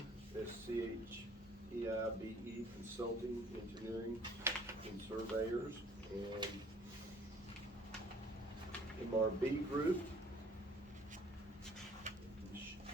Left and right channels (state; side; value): normal; both; correlation 0.55